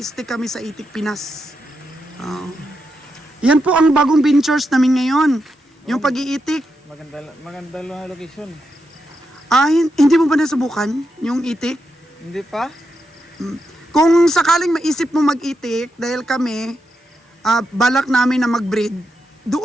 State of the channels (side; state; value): both; normal; correlation 0.85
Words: kami sa itik Pinas. Yan po ang bagong ventures namin ngayon. Yung pag-iitik. Maganda lang location. Hindi mo ba nasubukan yung itik? Hindi pa? Kung sakaling maisip mo mag-itik, dahil kami, balak namin na mag-breed,